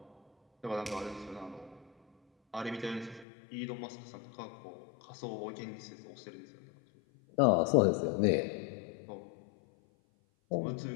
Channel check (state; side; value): drops out; right; at 3.2 s